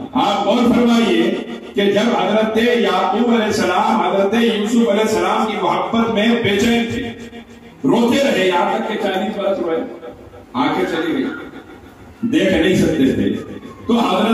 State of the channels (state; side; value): identical; both; correlation 1.00